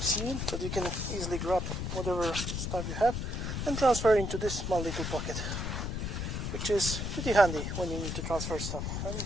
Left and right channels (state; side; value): noise; left; rumble, 3 dB below the sound